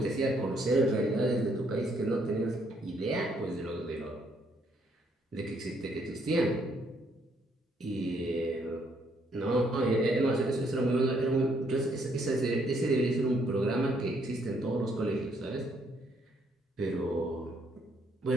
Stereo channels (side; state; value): both; normal; correlation 0.70